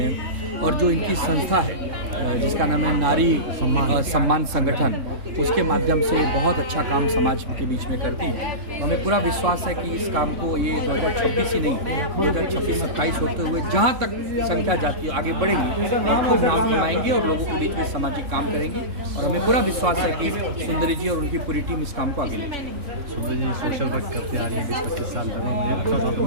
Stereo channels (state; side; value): late; left; 3.7 ms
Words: हैं। और जो इनकी संस्था है जिसका नाम है नारी सम्मान संगठन, उसके माध्यम से बहुत अच्छा काम समाज के बीच में करती हैं। तो हमें पूरा विश्वास है कि इस काम को ये 2026 ही नहीं 2026-27 होते हुए जहाँ तक संख्या जाती है आगे बढ़ेगी और खूब नाम कमाएंगे और लोगों के बीच में सामाजिक काम करेंगे। और हमें पूरा विश्वास है कि सुंदरी जी और उनकी पूरी टीम इस काम को आगे लेंगे। सुंदरी जी सोशल वर्क करते आ रही है 20-25 साल